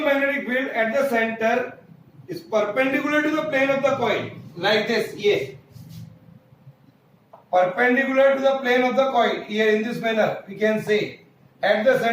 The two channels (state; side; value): identical; both; correlation 1.00